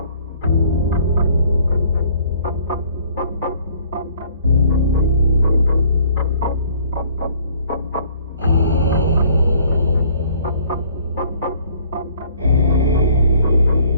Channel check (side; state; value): both; inverted; correlation -0.58